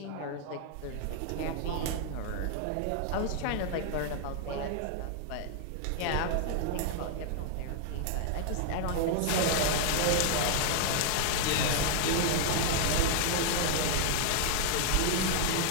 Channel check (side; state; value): both; different; correlation 0.00